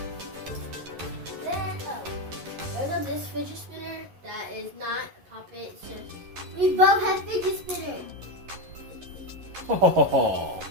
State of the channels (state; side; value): late; left; 11 ms